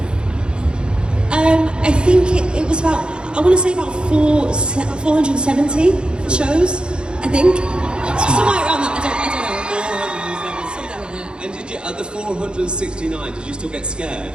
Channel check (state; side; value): late; left; 0.052 ms